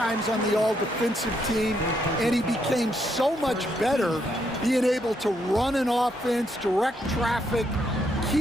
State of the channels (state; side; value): normal; both; correlation 0.76